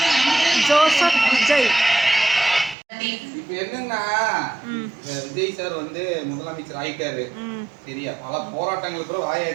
ஜோசப் விஜய் இப்ப என்னன்னா விஜய் சார் வந்து முதலமைச்சர் ஆயிட்டாரு சரியா. பல போராட்டங்களுக்கு கூட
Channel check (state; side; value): drops out; left; at 2.8 s